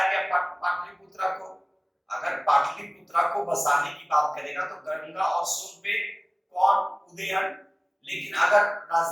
गया पाटलिपुत्र को। अगर पाटलिपुत्र को बसाने की बात करेगा तो गंगा और सोन पे कौन उदयन लेकिन अगर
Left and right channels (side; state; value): both; identical; correlation 1.00